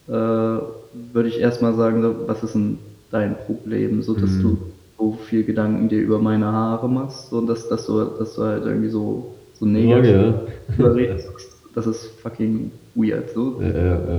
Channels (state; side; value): identical; both; correlation 1.00